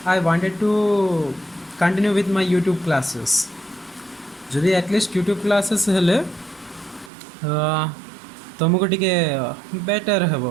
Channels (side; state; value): left; drops out; at 7.1 s